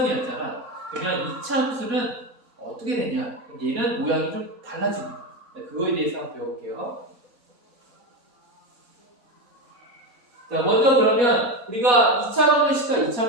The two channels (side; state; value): both; normal; correlation 0.16